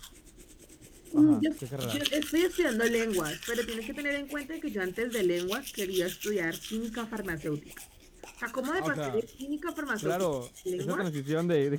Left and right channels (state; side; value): identical; both; correlation 1.00